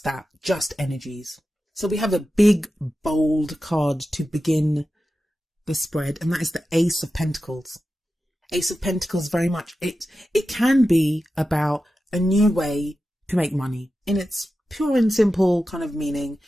that, just energies. So we have a big, bold card to begin the spread, and that is the Ace of Pentacles. Ace of Pentacles, very much, it can be about a new way to make money in its pure and simple kind of meaning.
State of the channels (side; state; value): both; normal; correlation 0.92